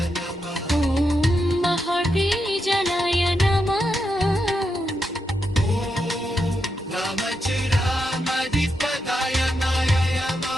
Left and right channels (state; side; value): normal; both; correlation 0.84